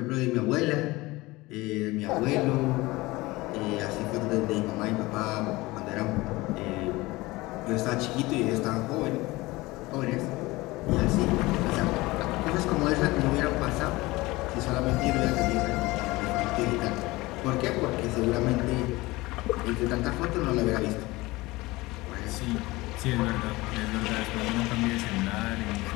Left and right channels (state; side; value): quieter; right; 20.9 dB